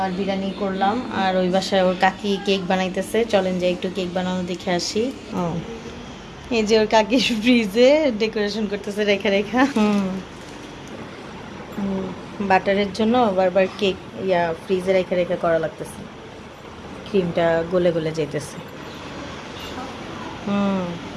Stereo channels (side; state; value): both; identical; correlation 1.00